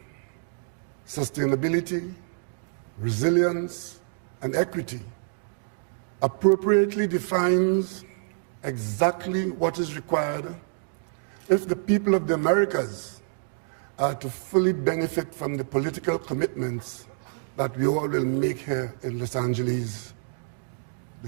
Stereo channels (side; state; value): left; silent; digital silence